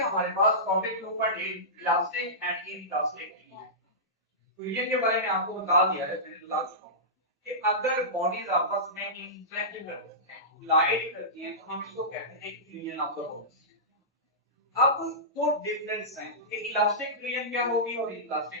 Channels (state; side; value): normal; both; correlation -0.18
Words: हमारे पास topic number 8 elastic and inelastic fluid के बारे में आपको बता दिया है, मैंने बता चुका हूं कि अगर बॉडीज आपस में इंटरेक्ट करती हैं, कोलाइड करती हैं, तो हम इसको कहते हैं फ्यूजन ऑफ द बॉडीज। अब दो डिफरेंस हैं कि इलास्टिक फ्लूइड क्या होगी और